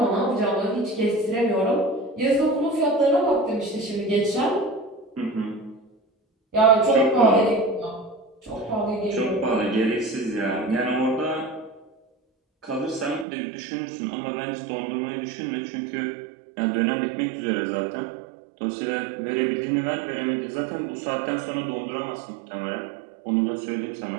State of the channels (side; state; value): left; drops out; at 13.2 s